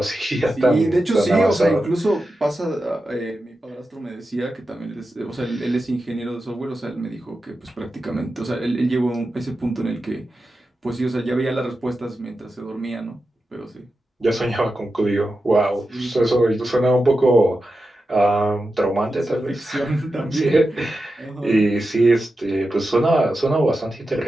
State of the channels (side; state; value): both; normal; correlation 0.91